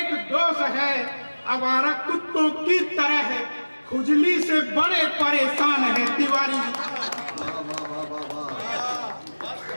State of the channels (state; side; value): inverted; both; correlation -1.00